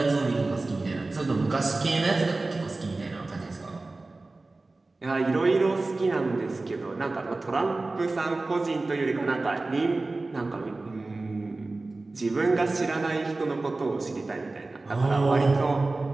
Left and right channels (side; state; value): left; quieter; 3.3 dB